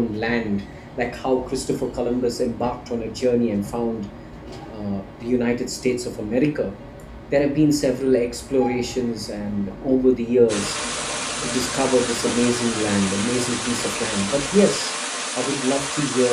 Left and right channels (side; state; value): both; identical; correlation 1.00